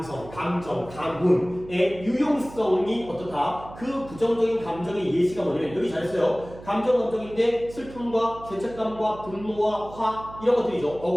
감정, 감흥의 유용성이 어떻다? 그 부정적인 감정의 예시가 뭐냐면 여기 잘했어요. 감정인데 슬픔과 죄책감과 분노와 화 이런 것들이죠.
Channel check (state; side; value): noise; right; hum, 17 dB below the sound